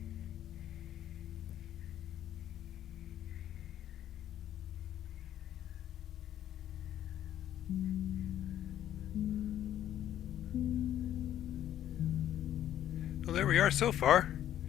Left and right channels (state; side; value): quieter; right; 11.5 dB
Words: Well, there we are so far.